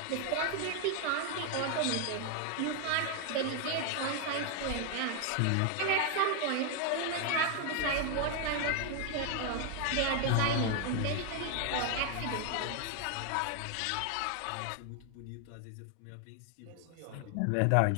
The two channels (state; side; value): different; both; correlation 0.00